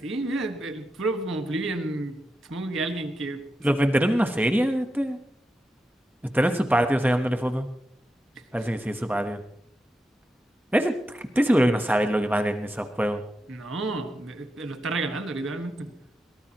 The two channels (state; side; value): normal; both; correlation 0.88